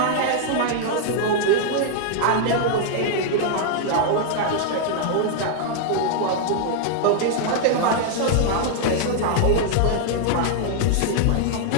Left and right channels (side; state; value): both; different; correlation -0.01